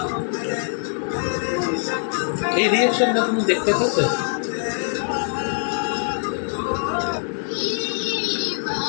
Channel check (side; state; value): right; silent; 59 dB below the other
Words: এই রিয়াকশনটা তুমি দেখতে পেতে?